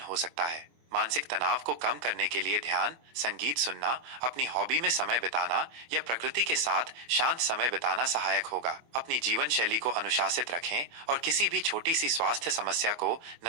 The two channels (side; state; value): left; late; 24 ms